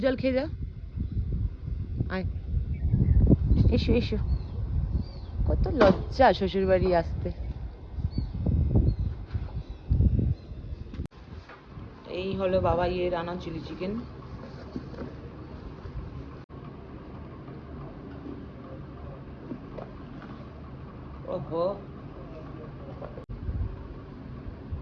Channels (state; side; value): identical; both; correlation 1.00